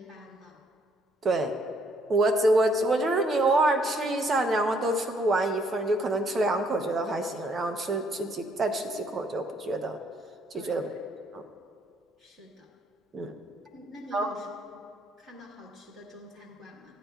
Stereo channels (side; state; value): both; normal; correlation 0.67